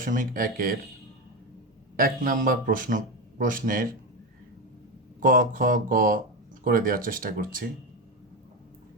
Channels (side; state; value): both; normal; correlation 0.15